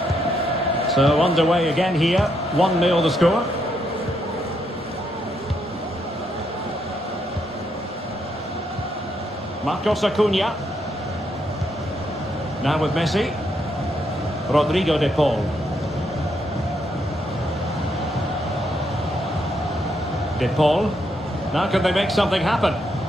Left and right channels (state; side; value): normal; both; correlation 0.77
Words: So underway again here, 1-0 the score. Marcos Acuna. Now with Messi. Rodrigo de Paul. De Paul. Now can they make something happen?